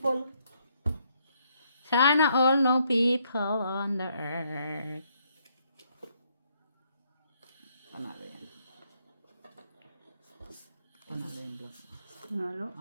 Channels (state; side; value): inverted; both; correlation -0.71